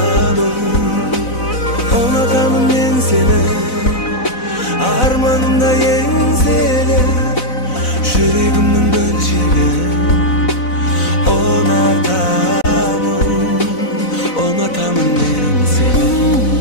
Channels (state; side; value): late; right; 4.0 ms